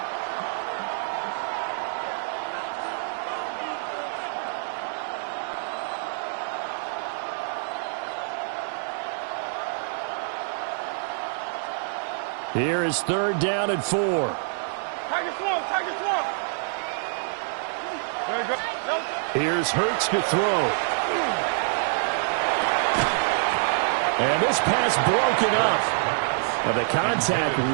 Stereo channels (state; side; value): silent; left; digital silence